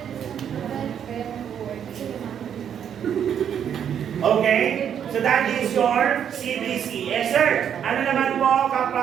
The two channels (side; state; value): left; quieter; 8.7 dB